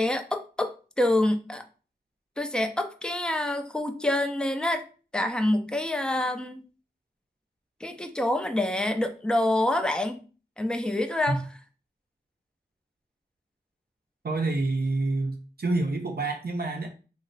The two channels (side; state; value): both; normal; correlation 0.83